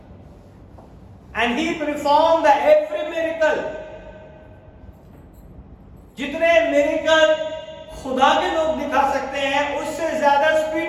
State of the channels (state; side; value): identical; both; correlation 1.00